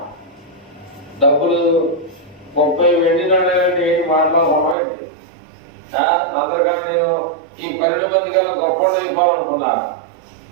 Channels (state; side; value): drops out; left; at 4.8 s